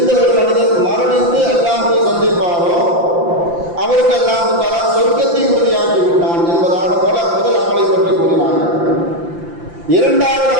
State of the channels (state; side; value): late; left; 5.8 ms